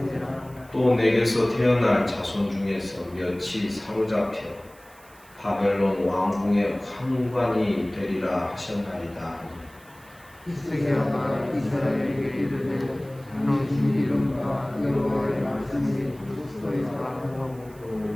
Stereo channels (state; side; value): noise; right; hiss, 26 dB below the sound